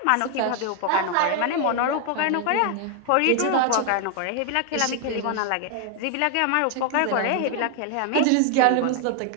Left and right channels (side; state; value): both; different; correlation 0.00